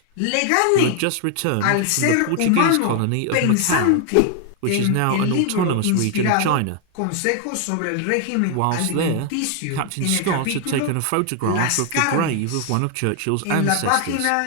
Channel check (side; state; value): both; different; correlation 0.00